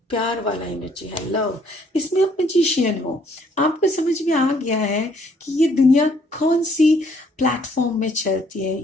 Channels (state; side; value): normal; both; correlation 0.64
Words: प्यार वाला एनर्जी है, लव। इसमें आप मैजिशियन हो। आपको समझ में आ गया है कि ये दुनिया कौन सी प्लेटफॉर्म में चलती है,